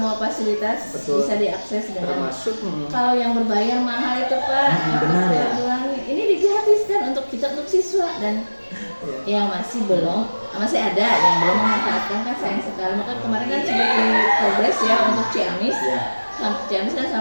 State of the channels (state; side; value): inverted; both; correlation -1.00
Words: fasilitas bisa diakses dengan. Termasuk kalau yang berbayar mahal itu Pak. Benar ya. Ini digratiskan untuk siswa dan yang masih ada yang belum memanfaatkan kan sayang sekali. Maka kemarin kan sudah di progres ya untuk Ciamis. Ciamis kan